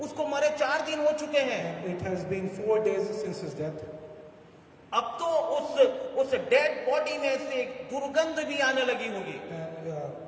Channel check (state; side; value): identical; both; correlation 1.00